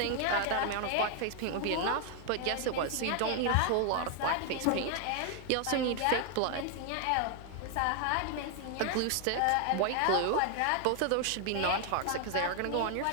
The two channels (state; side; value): different; both; correlation 0.00